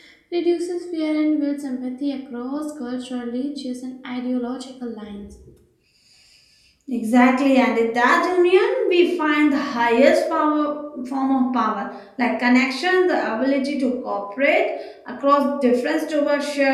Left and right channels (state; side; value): identical; both; correlation 1.00